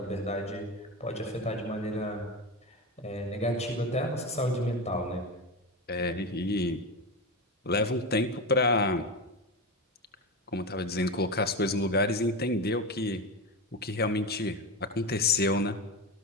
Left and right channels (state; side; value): normal; both; correlation 0.19